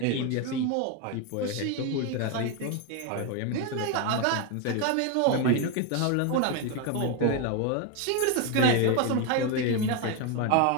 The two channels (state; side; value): different; both; correlation 0.02